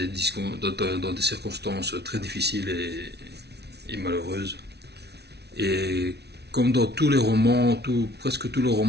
circonstances très difficiles et malheureuses. Et comme dans tous les romans, presque tous les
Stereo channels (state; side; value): late; left; 0.49 ms